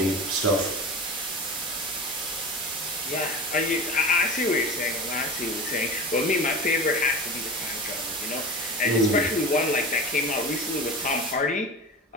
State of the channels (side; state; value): both; normal; correlation 0.31